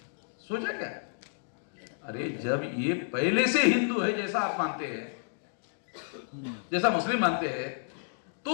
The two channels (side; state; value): right; silent; digital silence